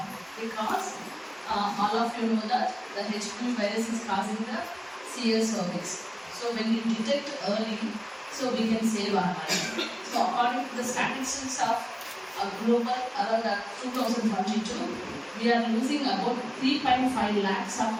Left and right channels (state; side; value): identical; both; correlation 1.00